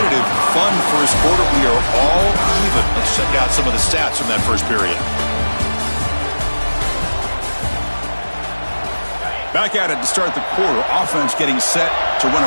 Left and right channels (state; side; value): inverted; both; correlation -1.00